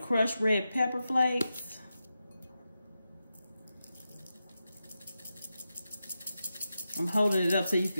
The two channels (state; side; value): inverted; both; correlation -0.89